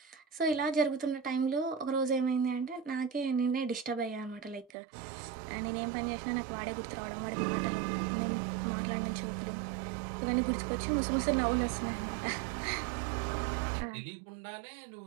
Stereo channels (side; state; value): left; drops out; at 4.7 s